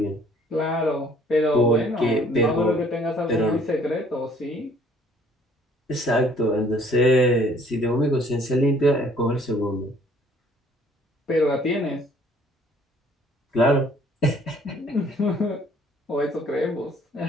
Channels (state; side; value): normal; both; correlation 0.59